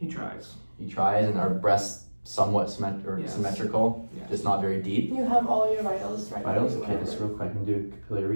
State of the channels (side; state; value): both; inverted; correlation -1.00